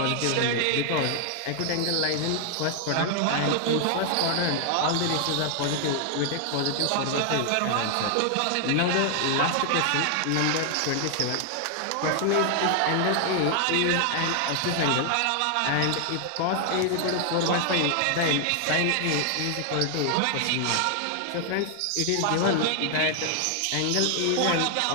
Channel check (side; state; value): both; different; correlation 0.00